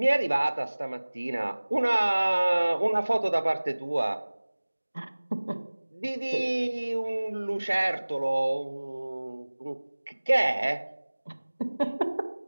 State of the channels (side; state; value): both; inverted; correlation -1.00